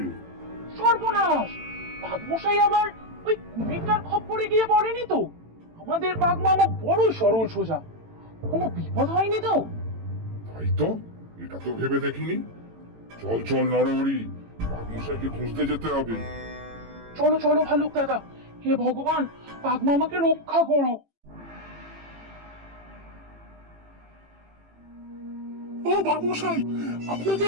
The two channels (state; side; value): late; left; 18 ms